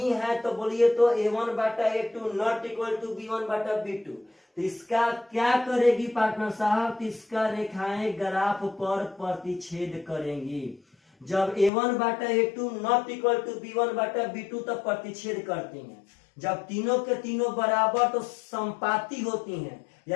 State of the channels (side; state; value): right; drops out; at 11.7 s